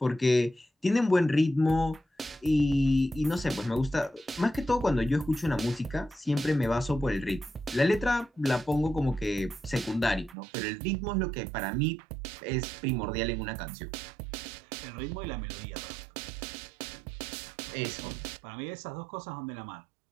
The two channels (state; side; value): drops out; left; at 10.4 s